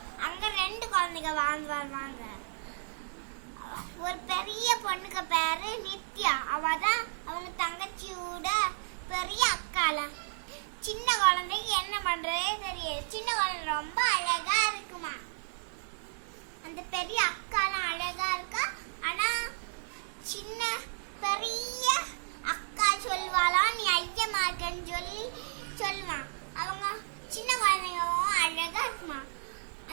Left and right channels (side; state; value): left; silent; digital silence